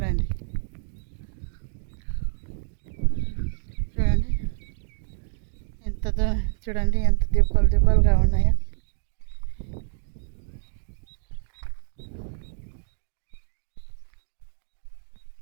చూడండి ఎంత దూరం, చూడండి ఎంత దిబ్బలుగా ఉన్నాయో.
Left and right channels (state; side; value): silent; left; digital silence